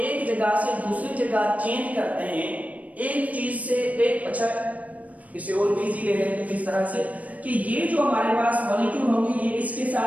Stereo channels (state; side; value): late; left; 0.070 ms